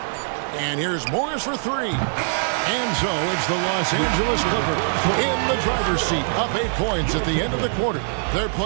And here's Morris for 3. And so it's the Los Angeles Clippers in the driver's seat, up 8 points at the end of the quarter. They're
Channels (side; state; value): left; silent; 64 dB below the other